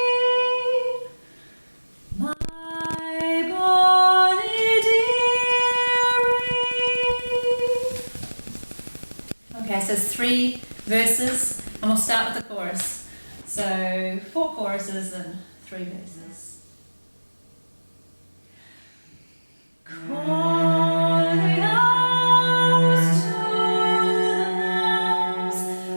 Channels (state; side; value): inverted; both; correlation -1.00